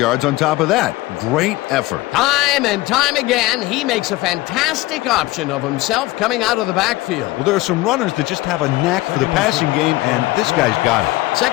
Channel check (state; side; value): quieter; right; 19.2 dB